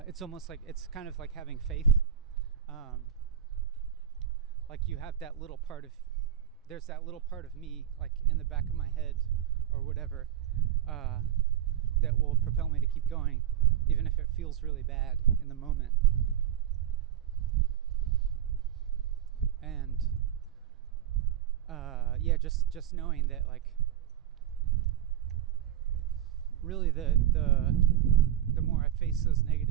it's almost like it's kind of like having faith. Like you have that little part of, there's that little part of me, like in the back of my head or whatever, that will propel me to keep going, even if it feels really bad in the moment. And yeah, just knowing that, like, really the more I face those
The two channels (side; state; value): left; quieter; 10.7 dB